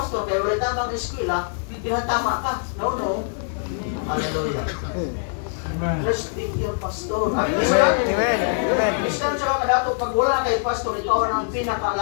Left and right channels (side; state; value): right; silent; 63 dB below the other